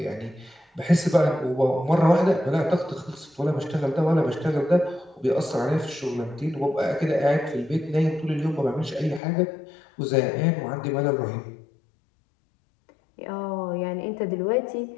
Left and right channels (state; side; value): drops out; right; at 9.2 s